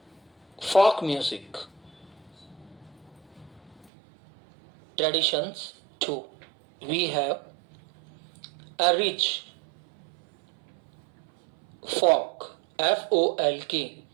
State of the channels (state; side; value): drops out; left; at 3.9 s